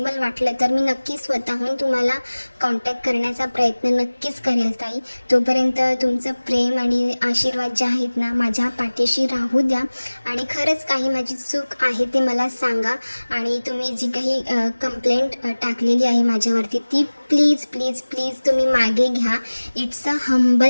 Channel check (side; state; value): both; inverted; correlation -1.00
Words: वाटलं तर मी नक्की स्वतःहून तुम्हाला कॉन्टॅक्ट करण्याचा प्रयत्न नक्कीच करेल ताई. तोपर्यंत तुमचं प्रेम आणि आशीर्वाद जे आहेत ना माझ्या पाठीशी राहू द्या. आणि खरंच काही माझी चूक आहे ते मला सांगा. आणि तुम्ही जी काही कंप्लेंट टाकलेली आहे माझ्यावरती ती प्लीज प्लीज प्लीज तुम्ही मागे घ्या. It's a